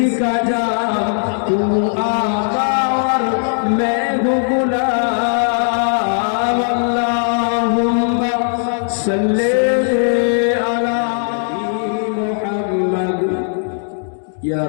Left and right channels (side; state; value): right; silent; digital silence